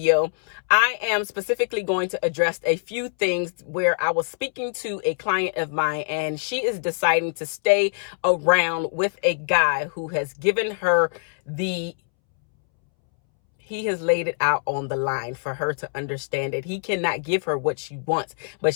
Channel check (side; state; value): right; silent; 63 dB below the other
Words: I am specifically going to address a few things where I was speaking to a client of mine and she is deciding to stay around with a guy who has given her he has laid it out on the line for her to understand that he cannot give her what she wants, but